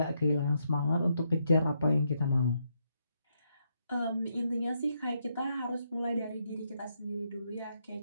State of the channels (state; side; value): inverted; both; correlation -0.79